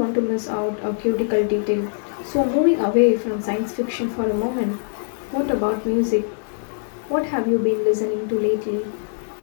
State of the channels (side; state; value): right; silent; digital silence